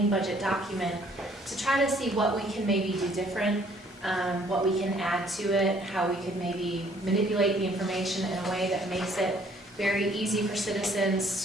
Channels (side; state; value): both; normal; correlation 0.61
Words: budget document, to try to see what we can maybe do different, what we can add to it, how we could maybe manipulate the information in a way that makes it very easy for